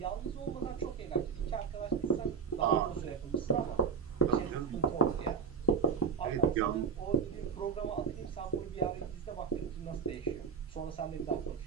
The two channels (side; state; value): left; quieter; 5.8 dB